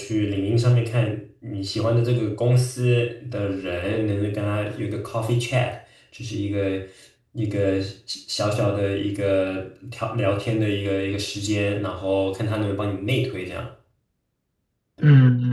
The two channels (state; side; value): identical; both; correlation 1.00